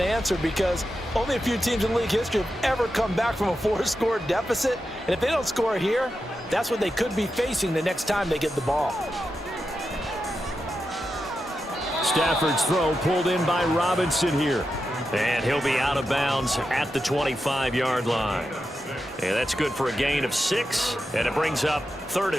answer because only a few teams in league history have ever come back from a 4-score deficit, and if they don't score here, that's what they could be facing the next time they get the ball. Stafford's throw pulled in by Robinson here. And he'll be out of bounds at the 25-yard line. And that's good for a gain of 6, and it brings up 3rd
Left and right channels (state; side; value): normal; both; correlation 0.89